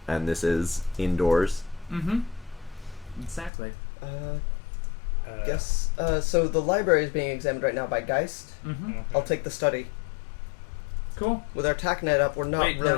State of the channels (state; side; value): drops out; right; at 3.5 s